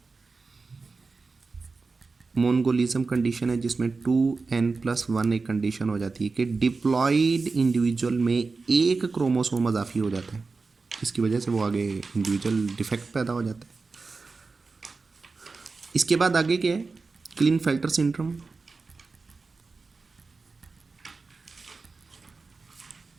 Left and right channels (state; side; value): quieter; left; 4.1 dB